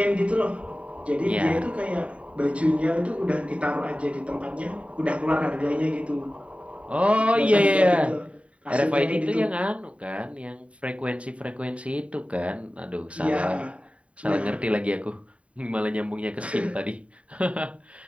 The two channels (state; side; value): late; left; 0.064 ms